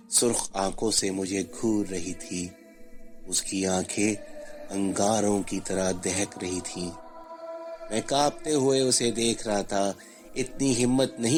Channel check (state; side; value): identical; both; correlation 1.00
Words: سرخ آنکھوں سے مجھے گھور رہی تھی۔ اس کی آنکھیں انگاروں کی طرح دہک رہی تھیں۔ میں کانپتے ہوئے اسے دیکھ رہا تھا۔ اتنی ہمت